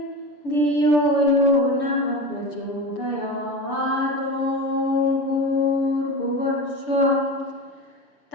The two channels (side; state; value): right; late; 6.9 ms